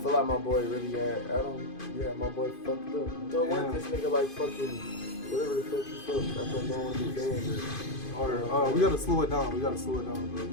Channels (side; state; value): right; late; 2.5 ms